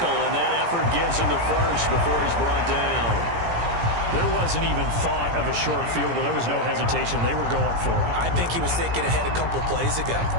and that effort gives him the first before he's brought down. There wasn't even thought of a short field goal. There was no hesitation. They were going for it. I think he was thinking ahead a couple plays ago,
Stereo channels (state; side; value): late; left; 17 ms